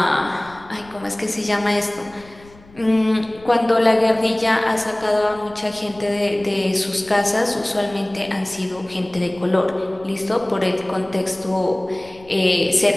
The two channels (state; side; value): noise; left; rumble, 24 dB below the sound